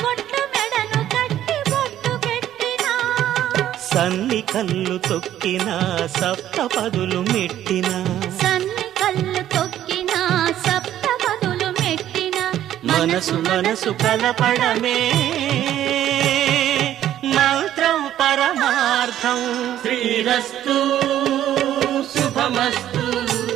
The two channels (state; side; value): quieter; left; 11.9 dB